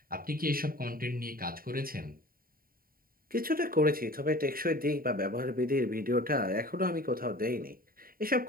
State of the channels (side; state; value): left; late; 0.42 ms